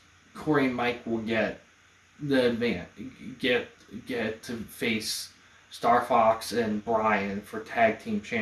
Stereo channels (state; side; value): identical; both; correlation 1.00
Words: Corey and Mike will get the get to face Star Fox and Brian for tag team